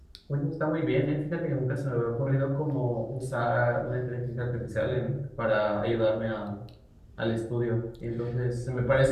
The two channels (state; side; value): identical; both; correlation 1.00